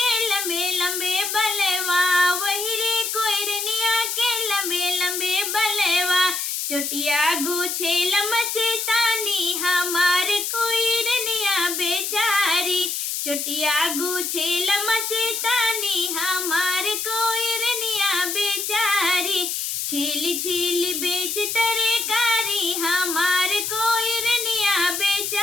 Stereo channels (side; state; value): left; noise; hiss, 2 dB below the sound